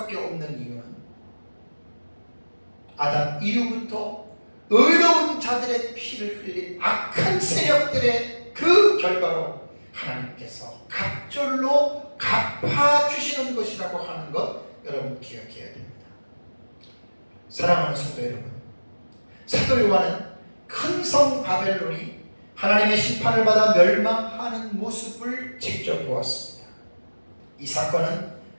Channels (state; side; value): inverted; both; correlation -1.00